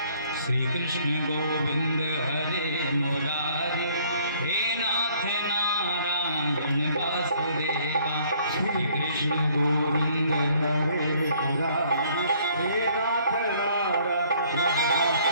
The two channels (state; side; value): inverted; both; correlation -0.60